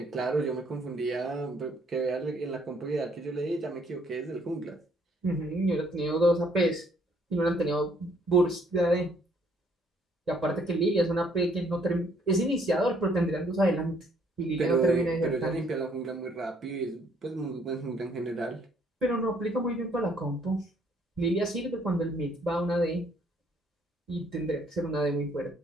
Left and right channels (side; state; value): both; normal; correlation 0.65